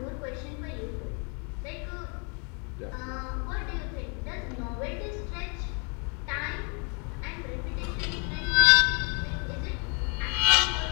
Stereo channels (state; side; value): quieter; right; 36.6 dB